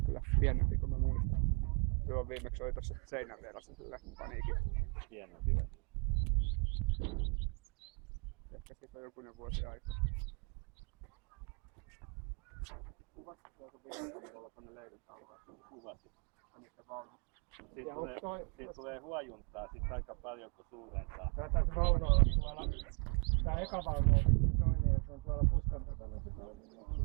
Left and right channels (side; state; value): left; quieter; 35.0 dB